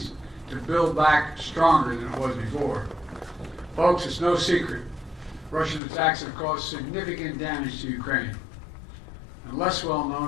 to build back stronger than it was before. Folks, it's no secret, Russian attacks have caused significant damage to Ukraine. And less well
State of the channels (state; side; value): drops out; right; at 5.8 s